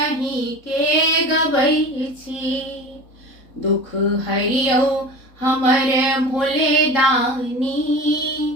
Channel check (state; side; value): late; right; 3.7 ms